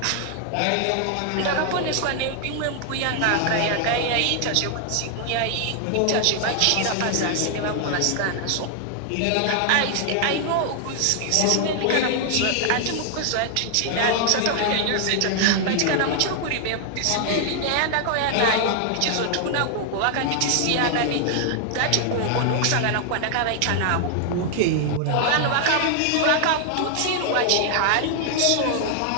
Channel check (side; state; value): both; different; correlation 0.00